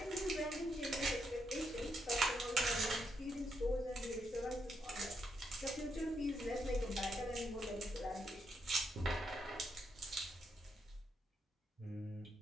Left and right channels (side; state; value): both; normal; correlation 0.79